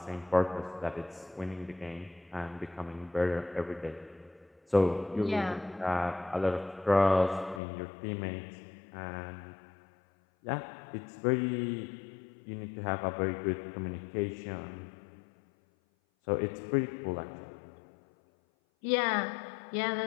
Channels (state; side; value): drops out; right; at 7.6 s